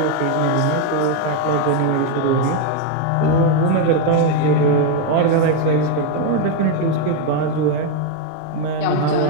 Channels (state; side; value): different; both; correlation 0.02